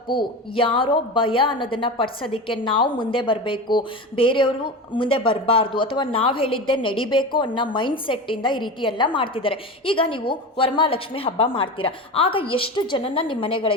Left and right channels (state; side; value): normal; both; correlation 0.26